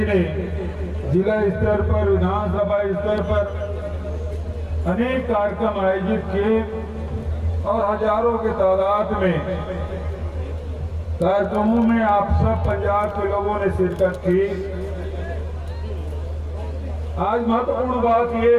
ने जिला स्तर पर, विधानसभा स्तर पर अनेक कार्यक्रम आयोजित किए और हजारों की तादाद में कार्यक्रमों में आप सब पंजाब के लोगों ने शिरकत की। आज महत्वपूर्ण बात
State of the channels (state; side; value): identical; both; correlation 1.00